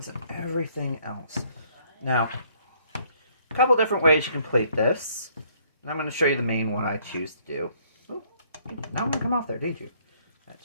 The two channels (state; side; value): inverted; both; correlation -0.64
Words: and everything else. Now, a couple different ways you can plate this. And I'm going to show you the main one I choose to do. Ooh, now I'm going to come off there, didn't you? That